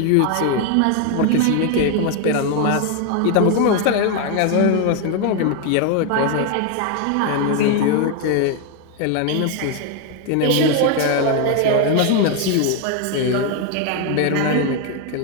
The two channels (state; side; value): different; both; correlation 0.01